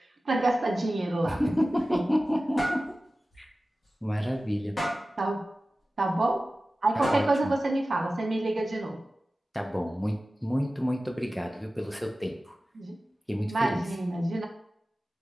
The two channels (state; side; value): normal; both; correlation 0.96